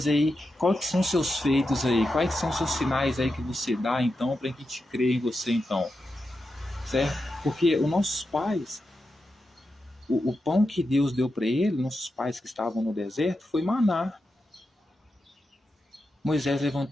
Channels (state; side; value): normal; both; correlation 0.88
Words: aí quais que são os seus feitos aí, quais que são os seus sinais aí que você dá então para que a gente creia em você então, certo? Porque os nossos pais, o pão que Deus deu para eles, nossos pais que estavam no deserto, foi maná. Moisés